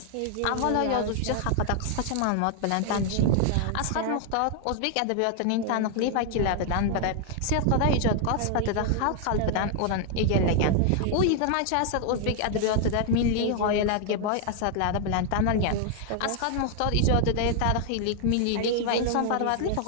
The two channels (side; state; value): both; different; correlation 0.00